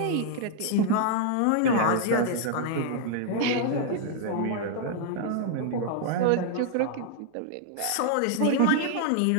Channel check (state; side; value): different; both; correlation 0.00